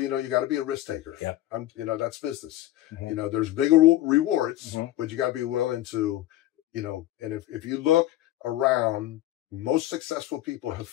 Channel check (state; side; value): quieter; right; 14.5 dB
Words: know, you got to be a risk taker. Yeah. You know, that's business. You know, there's bigger rewards, but you got to be willing to, you know, and if you look around, most successful people have